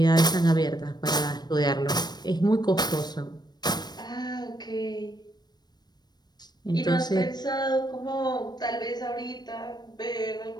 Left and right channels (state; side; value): late; right; 0.20 ms